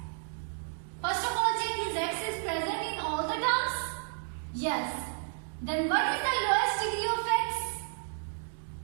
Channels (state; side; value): silent; left; 56 dB below the other